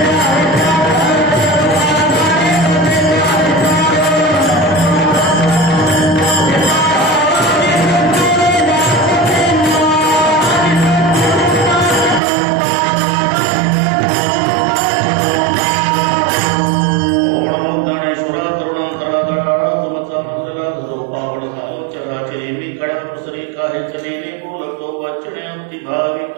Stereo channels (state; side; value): drops out; left; at 12.2 s